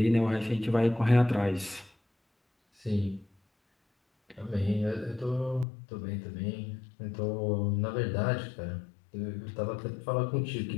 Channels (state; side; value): drops out; right; at 5.7 s